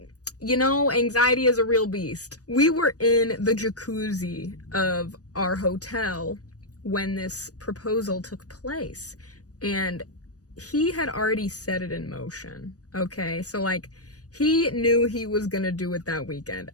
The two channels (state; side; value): late; right; 0.67 ms